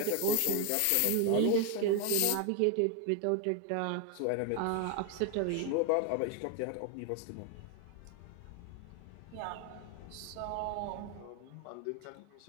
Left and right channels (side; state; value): both; different; correlation 0.01